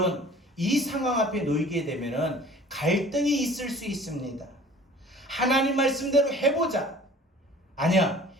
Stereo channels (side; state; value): both; normal; correlation 0.48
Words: 이 상황 앞에 놓이게 되면은 갈등이 있을 수 있습니다. 하나님 말씀대로 해보자. 아니야